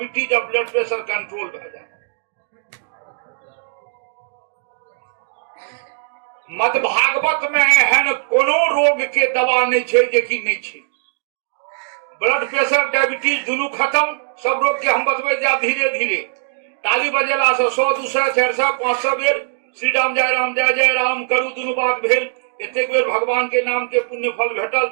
और ब्लड प्रेशर कंट्रोल भए जाए। मद भागवत में एहन कोनो रोग के दवा नहीं छै जे कि नहीं छै। ब्लड प्रेशर डायबिटीज दुनू खत्म, सब रोग के हम बतबै जाब धीरे धीरे। ताली बजेला से 100, 200, 400, 500 बेर श्री राम जय जय राम करू दुनू बात भेल। एतेक बेर भगवान के नाम के पुण्य फल भेटल।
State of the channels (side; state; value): left; silent; digital silence